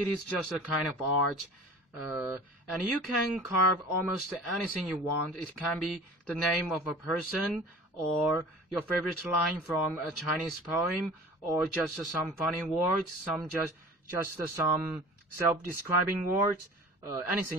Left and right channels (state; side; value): normal; both; correlation 0.41